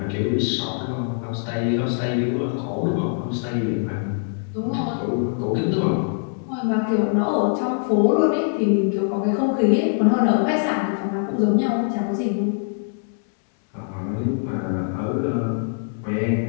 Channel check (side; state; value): right; silent; 64 dB below the other